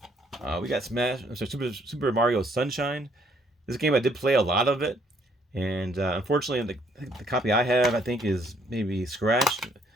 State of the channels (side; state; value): both; normal; correlation 0.66